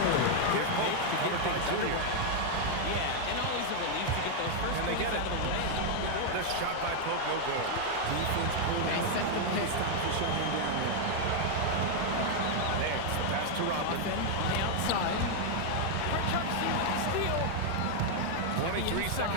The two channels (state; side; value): different; both; correlation 0.00